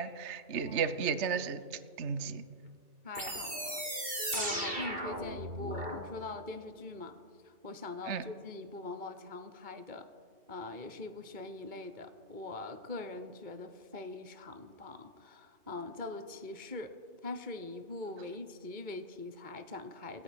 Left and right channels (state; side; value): late; left; 2.7 ms